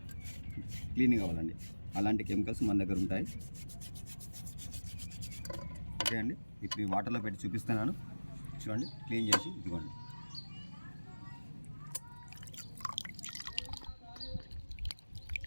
క్లీన్ కావాలండి. అలాంటి కెమికల్స్ మన దగ్గర ఉంటాయి. ఓకే అండి, ఇప్పుడు ఈ వాటర్లో పెట్టి చూపిస్తున్నాను, చూడండి క్లీన్ చేసి. ఇదిగోండి,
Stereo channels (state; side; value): inverted; both; correlation -1.00